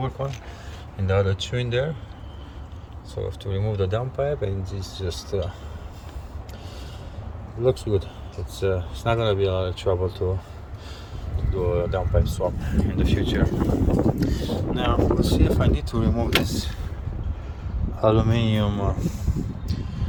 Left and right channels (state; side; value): identical; both; correlation 1.00